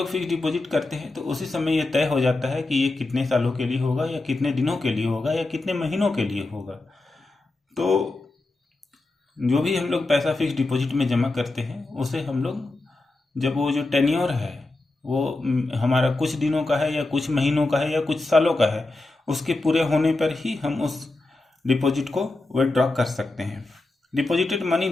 फिक्स डिपॉजिट करते हैं तो उसी समय यह तय हो जाता है कि ये कितने सालों के लिए होगा या कितने दिनों के लिए होगा या कितने महीनों के लिए होगा। तो जो भी हम लोग पैसा फिक्स डिपॉजिट में जमा करते हैं उसे हम लोग जब वो जो टेन्योर है वो हमारा कुछ दिनों का है या कुछ महीनों का है या कुछ सालों का है, उसके पूरे होने पर ही हम उस डिपॉजिट को विथड्रॉ कर सकते हैं। Deposited money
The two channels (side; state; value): right; quieter; 3.0 dB